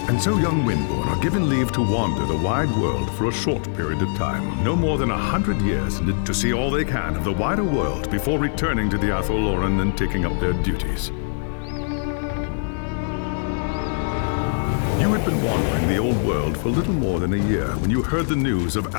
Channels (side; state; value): right; silent; digital silence